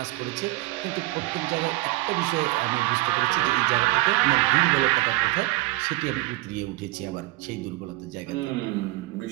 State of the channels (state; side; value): quieter; left; 19.1 dB